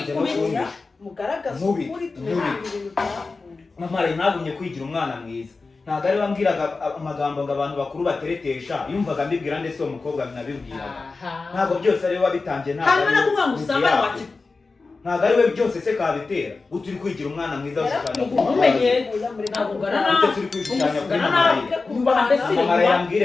mugaragaza ukuri tumenya ibintu byavuye mama Rayira nagumye kwigira umwana mwiza ntabwo ari bambwiraga amagambo ngo abantu bakuru bateretesha yumvaga mbibwira ndetse uwo mukobwa nabibwiraga ntabwo byose ari we wabitangiye hanyuma nakuvuga ngo usambane waki ntabwo ari we byose se kabitera guta uri kwigira umwana mwiza ushushanya umenye ntabwo ugana ute turi kwishushanya kuri mama Rayira nubaha mbese mama Rayira ambwire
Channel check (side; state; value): right; quieter; 4.0 dB